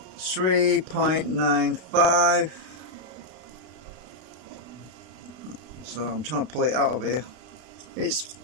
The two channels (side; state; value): left; late; 32 ms